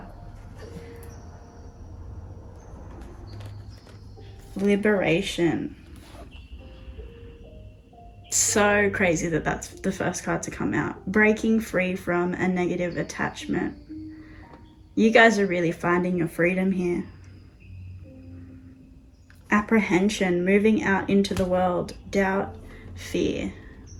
Liberation. So crazy that that's the first card to come out. Breaking free from a negative attachment. You guys are really finding your freedom here. Apprehension, moving out into the world. Doubt, fear.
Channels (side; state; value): both; identical; correlation 1.00